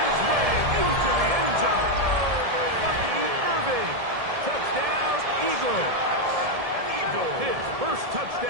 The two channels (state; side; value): late; left; 1.7 ms